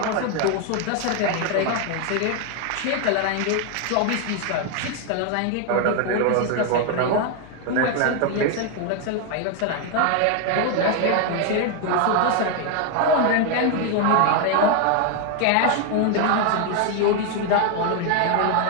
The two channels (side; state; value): both; different; correlation 0.01